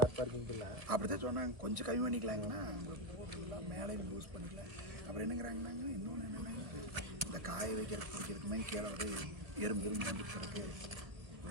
பார்க்கிங் இல்லை அப்படி தான் சொன்னாங்க. கொஞ்சம் கம்மி பண்ணிக்கலாங்கன்னா போட்டுக்கலாம், மேலே யூஸ் பண்ணிக்கலாம். அப்புறம் என்னங்கிறாங்கன்னாங்க, இன்னொன்று என்னென்னா இந்த காய வைக்கிறது பிடிக்கிறதுக்கு மாதிரி கீழே வந்து எறும்பு வந்துக்கிறதுக்கு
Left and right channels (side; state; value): left; late; 1.3 ms